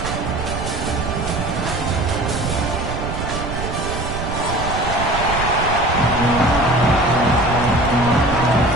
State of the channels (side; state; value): right; noise; rumble, 5 dB below the sound